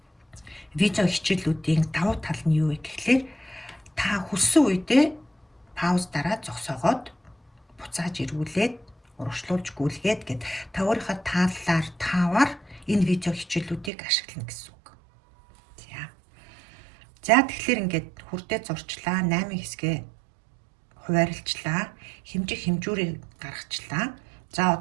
видео хичээлүүдийн давуу тал нь юу вэ гэхлээр та хүссэн үедээ пауз дараа зогсоогоод буцааж эргүүлээд урагшлуулж гүйлгээд гэд та өөрийнхөө тааллаар таавар энэ видео хичээлүүдийг ашиглана гэсэн үг. За тэгэхээр ингээд хүртээ зурчлаа, 8 хэсгээ хуваарлцлаа, хэмжүүрийг гаргачлаа. За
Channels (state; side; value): drops out; left; at 13.9 s